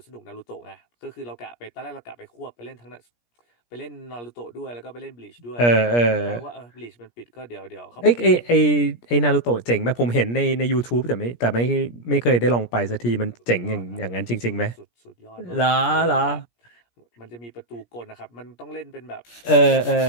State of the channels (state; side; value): late; right; 17 ms